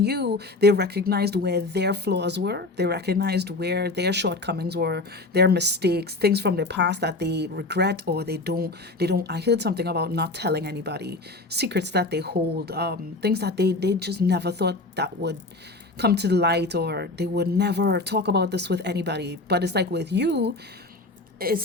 they recognized where their flaws were. They recognized where their shortcomings were, their mistakes, things from their past that they regret or they don't. I heard something about not telling anybody, secrets that they hold, things that they just never thought that would come to the light, or they would never talk about this with anybody. But it's like with you,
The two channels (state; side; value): quieter; right; 3.1 dB